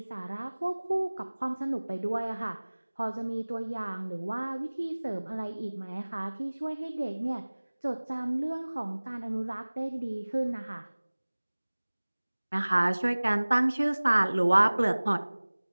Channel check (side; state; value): both; inverted; correlation -1.00